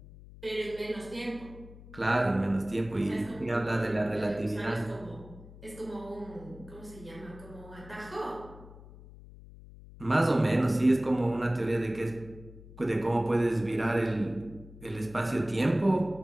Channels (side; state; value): left; noise; hum, 18 dB below the sound